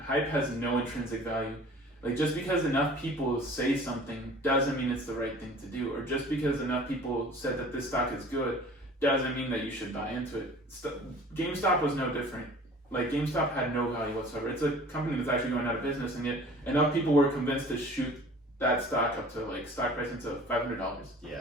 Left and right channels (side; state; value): both; normal; correlation 0.46